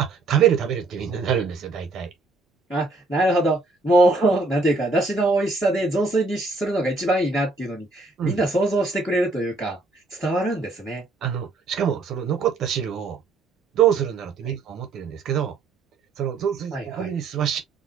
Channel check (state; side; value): quieter; left; 3.5 dB